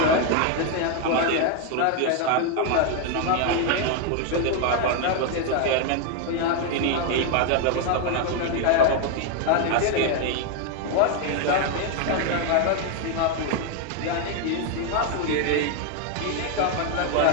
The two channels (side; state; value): both; different; correlation 0.01